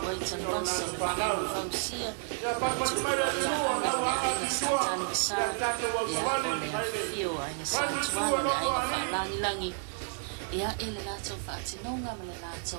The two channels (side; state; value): left; silent; 57 dB below the other